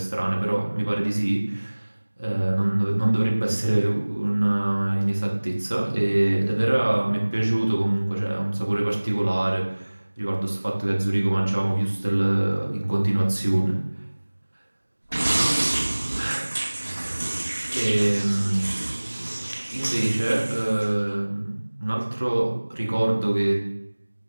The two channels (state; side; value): inverted; both; correlation -1.00